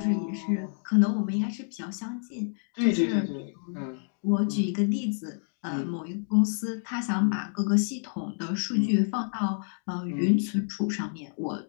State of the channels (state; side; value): silent; right; 59 dB below the other